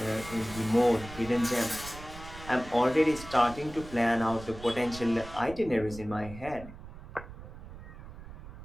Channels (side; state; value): right; noise; rumble, 14 dB below the sound